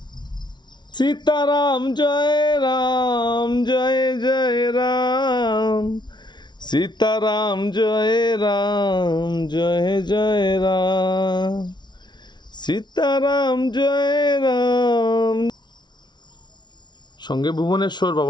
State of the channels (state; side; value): late; right; 0.21 ms